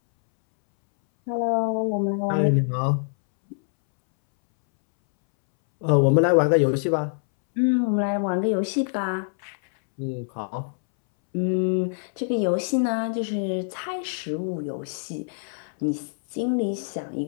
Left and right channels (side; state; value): right; silent; 62 dB below the other